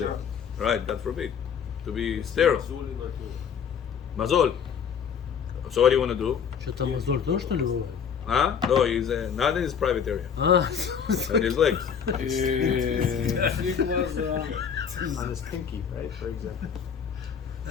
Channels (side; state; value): right; quieter; 7.3 dB